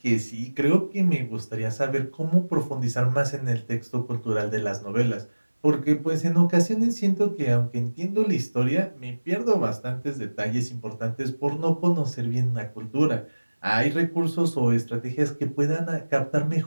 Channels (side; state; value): both; inverted; correlation -1.00